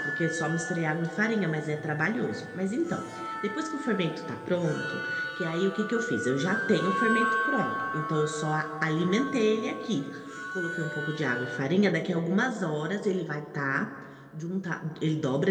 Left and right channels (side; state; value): both; identical; correlation 1.00